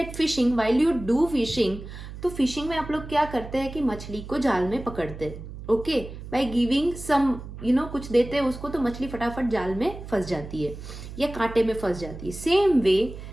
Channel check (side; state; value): right; noise; hum, 12 dB below the sound